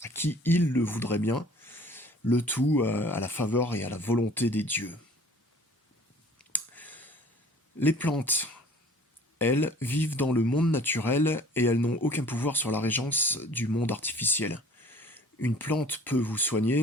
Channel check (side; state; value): both; normal; correlation 0.50